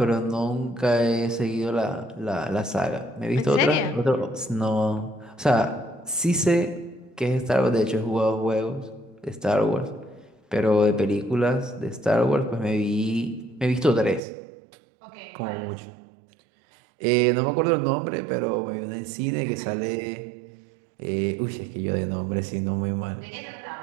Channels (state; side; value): drops out; left; at 14.2 s